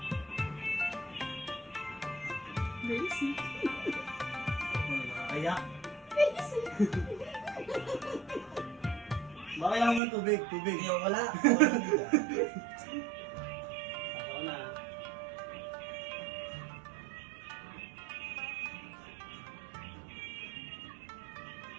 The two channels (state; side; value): drops out; left; at 10.0 s